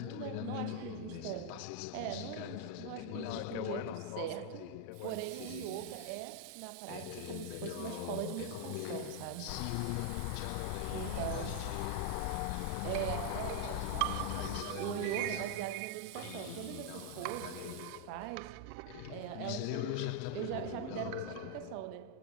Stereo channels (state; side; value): different; both; correlation 0.00